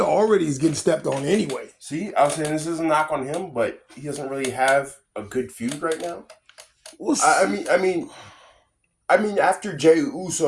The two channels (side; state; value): both; identical; correlation 1.00